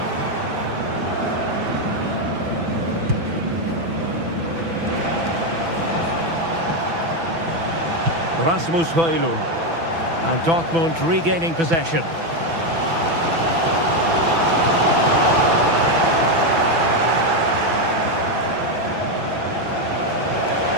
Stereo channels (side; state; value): left; late; 6.0 ms